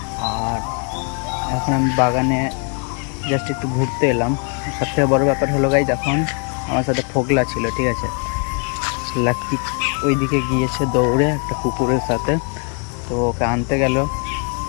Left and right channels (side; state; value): right; quieter; 38.0 dB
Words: আর এখন আমি বাগানে জাস্ট একটু ঘুরতে এলাম। সবথেকে বড় ব্যাপার হলো গাইজ, এখন আমার সাথে ফোগলা ছিল, ঠিক আছে। লাকি ওইদিকে গিয়েছে দৌড়ে একটা কুকুরের সাথে, তো ওকে আনতে গেল।